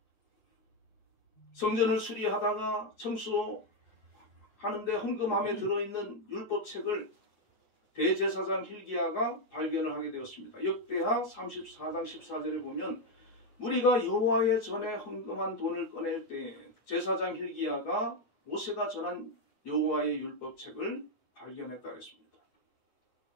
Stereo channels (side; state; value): right; late; 8.9 ms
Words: 성전을 수리하다가 청소하는데 헌금함에 들어있는 율법책을 대제사장 hil기야가 발견을 하게 되었습니다. 역대하 34장 14절에 보면 무리가 여호와의 전에 헌금한 돈을 꺼낼 때 제사장 hil기야가 모세가 전한 여호와의 율법책을 발견했다 그랬습니다.